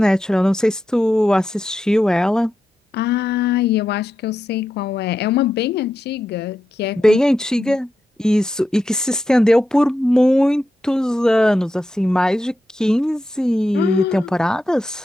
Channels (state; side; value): normal; both; correlation 0.87